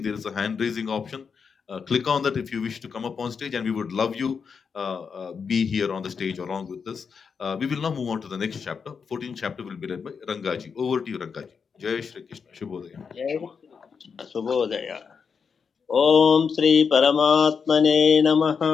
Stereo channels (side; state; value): right; quieter; 6.0 dB